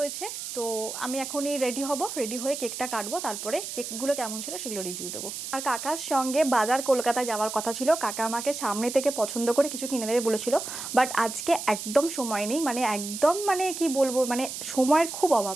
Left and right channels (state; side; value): noise; right; hiss, 7 dB below the sound